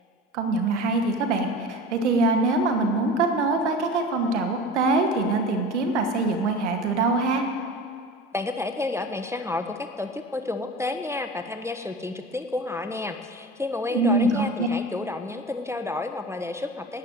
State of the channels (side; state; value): both; normal; correlation 0.34